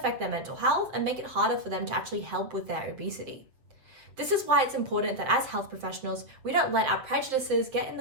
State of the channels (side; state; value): left; late; 7.9 ms